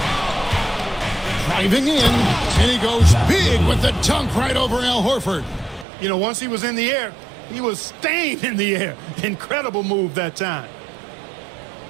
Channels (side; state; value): left; drops out; at 5.9 s